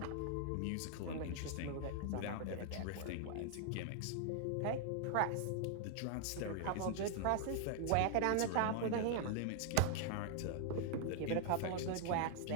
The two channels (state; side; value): different; both; correlation 0.00